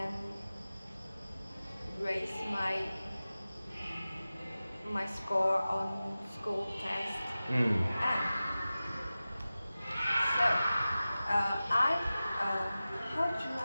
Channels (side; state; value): both; inverted; correlation -0.96